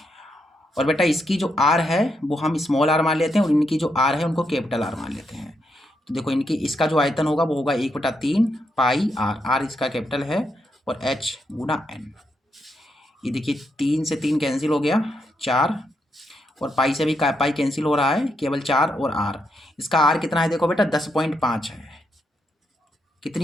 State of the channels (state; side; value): normal; both; correlation 0.81